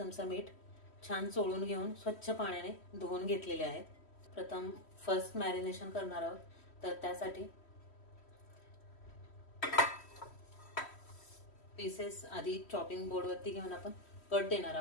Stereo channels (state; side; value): late; right; 3.1 ms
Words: मीठ छान चोळून घेऊन स्वच्छ पाण्याने धुवून घेतलेले आहेत। प्रथम फर्स्ट मॅरिनेशन करणार आहोत, तर त्यासाठी पीसेस आधी चॉपिंग बोर्ड वरती घेऊन आपण कट देणार